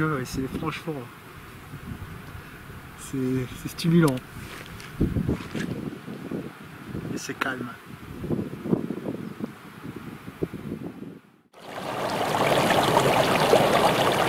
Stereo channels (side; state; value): both; identical; correlation 1.00